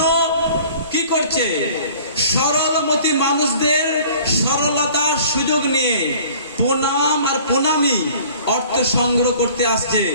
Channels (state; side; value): inverted; both; correlation -0.49